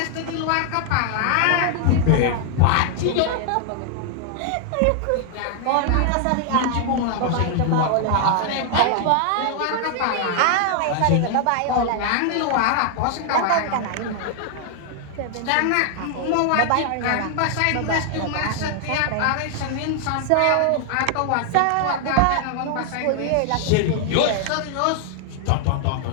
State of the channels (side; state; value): both; different; correlation 0.00